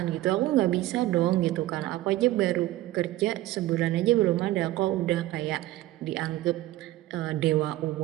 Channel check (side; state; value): left; quieter; 16.0 dB